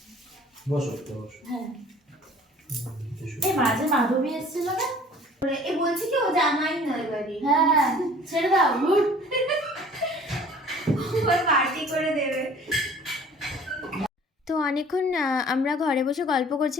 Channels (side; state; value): both; normal; correlation 0.50